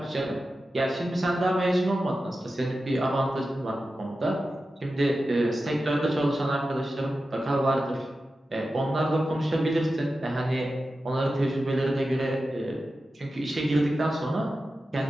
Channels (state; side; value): normal; both; correlation 0.92